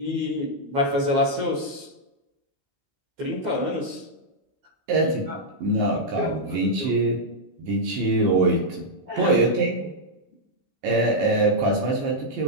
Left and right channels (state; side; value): late; left; 15 ms